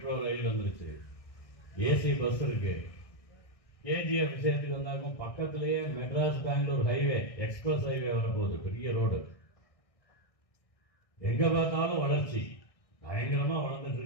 ரயில் வந்துருச்சு, ஏசி பஸ் இருக்கு. கேஜிஎஃப் விஷயத்துக்கு வந்தாக்கும் பக்கத்திலேயே Madras Bangalore highway, express highway வரப்போகுது, பெரிய ரோடு. எங்க பார்த்தாலும் வளர்ச்சி, பயங்கரமா வளர்ந்துட்டு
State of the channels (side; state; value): right; late; 1.6 ms